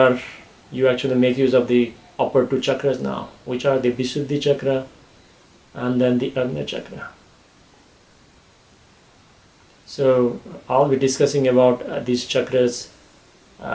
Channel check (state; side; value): identical; both; correlation 1.00